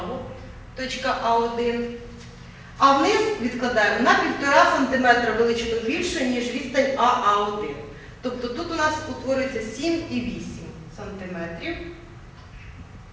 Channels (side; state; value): both; identical; correlation 1.00